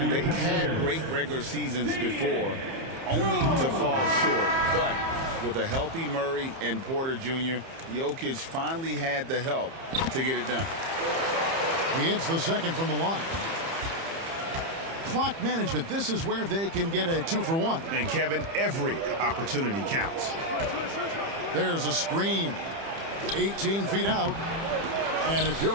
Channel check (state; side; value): late; left; 30 ms